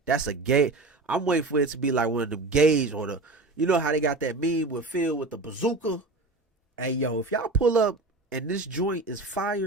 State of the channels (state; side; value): quieter; left; 3.3 dB